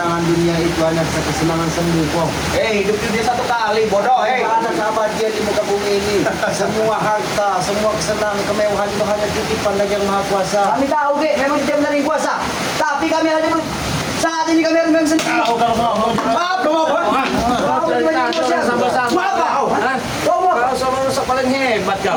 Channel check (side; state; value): both; identical; correlation 1.00